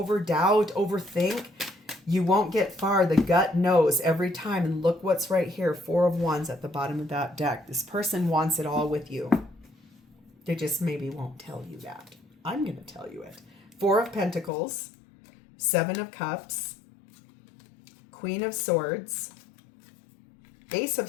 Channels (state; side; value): drops out; right; at 14.5 s